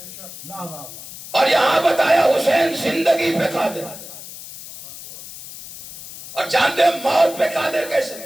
اور یہاں بتایا حسین زندگی پہ قادر. اور جانتے ہیں موت پہ قادر کیسے؟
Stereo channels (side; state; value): left; noise; hiss, 14 dB below the sound